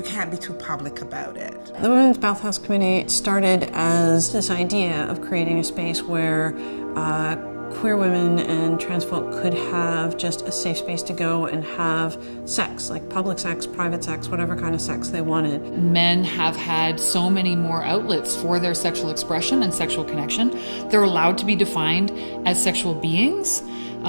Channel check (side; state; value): both; inverted; correlation -1.00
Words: can't be too public about it. The Women's Bathhouse Committee started as this idea of creating a space where queer women and trans folk could have just a safe space to go and have sex, like public sex, private sex, whatever kind of sex they wanted. Men have had so many more outlets for their sexual expression and sexual connection. They're allowed to be defined as sexual beings